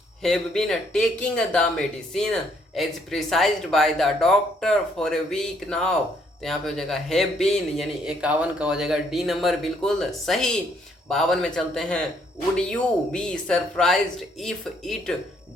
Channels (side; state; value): both; normal; correlation 0.69